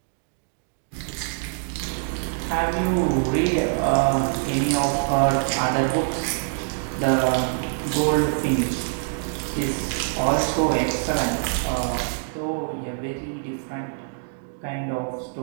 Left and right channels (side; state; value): left; silent; digital silence